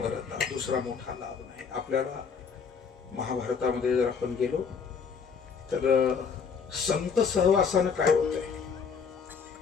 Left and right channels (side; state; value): right; quieter; 6.0 dB